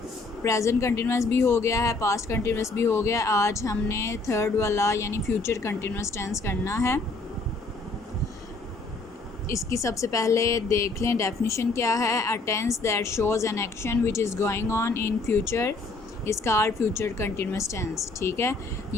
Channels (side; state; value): right; quieter; 3.5 dB